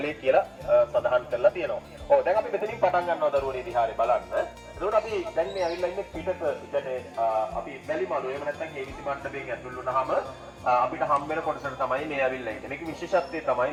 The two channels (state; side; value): identical; both; correlation 1.00